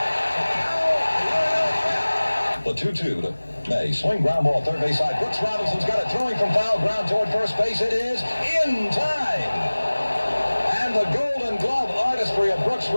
The 2-2 to May. Swing ground ball third base side. Brooks Robinson's got it throwing from foul ground toward first base. It is in time. And the Golden Glove artistry of Brooks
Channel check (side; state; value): both; inverted; correlation -1.00